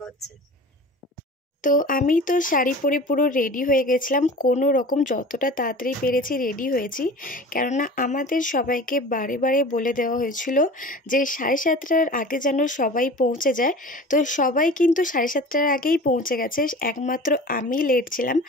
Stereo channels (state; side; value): normal; both; correlation 0.38